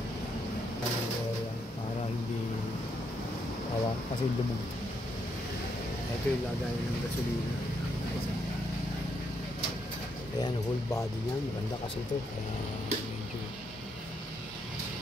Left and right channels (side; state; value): both; normal; correlation 0.77